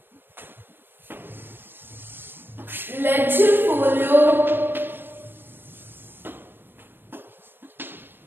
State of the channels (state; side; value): late; left; 0.097 ms